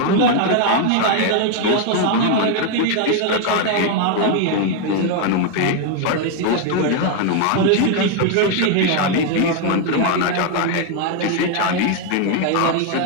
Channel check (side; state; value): both; different; correlation 0.00